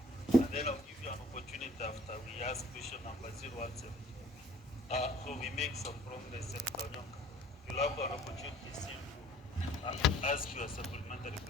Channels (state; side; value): normal; both; correlation 0.54